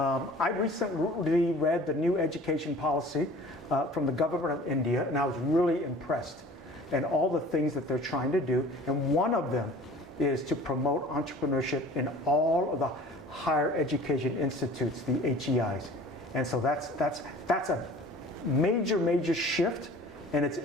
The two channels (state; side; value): normal; both; correlation 0.45